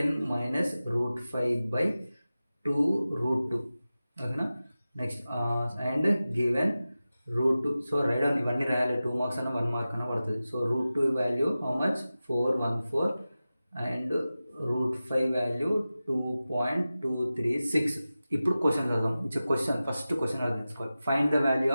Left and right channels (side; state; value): both; inverted; correlation -0.95